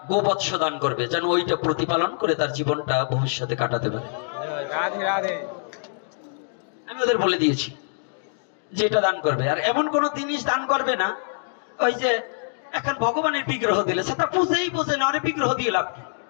গোবৎস দান করবে, যেন ওইটা প্রতিপালন করে তার জীবনটা ভবিষ্যতে কাটাতে পারে। রাধে রাধে। আমি ওদের বলে দিয়েছি যে এটা দান করবে। আর এমন কোন জিনিস দান করবে না ওই যে এখন ভগবানের বিগ্রহ দিলে সেটা বুঝেই বোঝে না, আরে বিগ্রহ দিয়ে লাভ কি?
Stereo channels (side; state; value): right; silent; digital silence